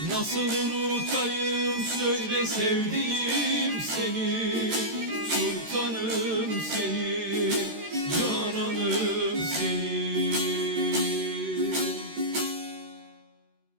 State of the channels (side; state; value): left; late; 13 ms